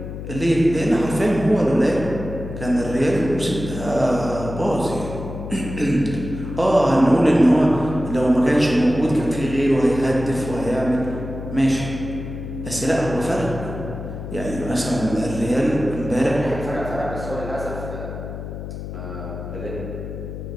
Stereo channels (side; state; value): left; noise; hum, 8 dB below the sound